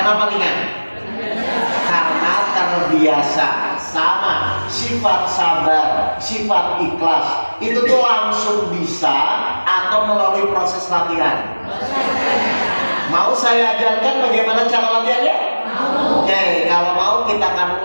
ringan? Karena terbiasa. Sama sifat sabar, sifat ikhlas itu tuh langsung bisa atau melalui proses latihan. Mau saya ajarkan bagaimana cara latihannya? Oke, kalau mau kita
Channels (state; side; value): inverted; both; correlation -1.00